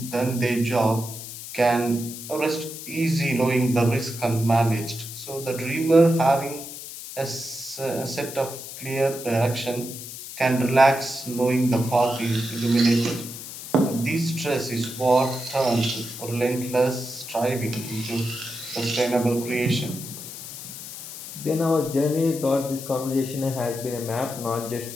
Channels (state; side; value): noise; left; hiss, 11 dB below the sound